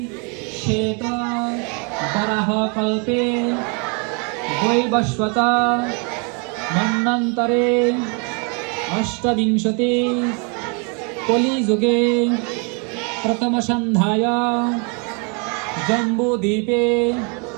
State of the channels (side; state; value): left; quieter; 35.5 dB